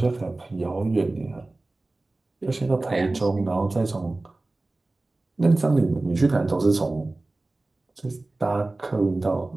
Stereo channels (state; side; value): quieter; left; 3.0 dB